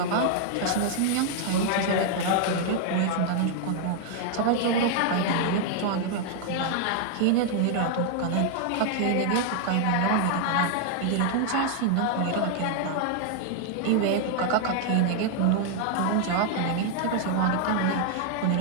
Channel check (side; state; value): both; different; correlation 0.00